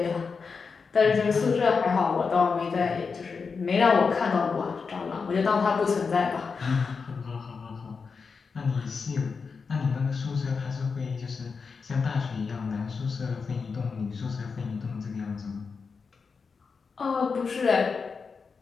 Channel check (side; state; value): right; quieter; 5.2 dB